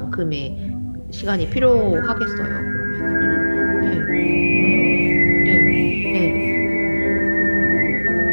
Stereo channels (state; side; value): inverted; both; correlation -1.00